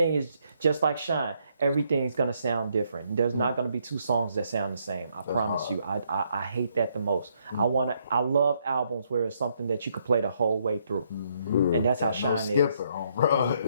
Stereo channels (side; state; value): both; inverted; correlation -0.73